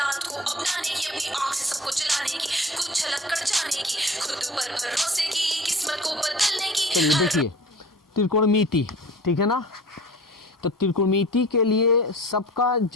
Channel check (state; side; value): normal; both; correlation 0.41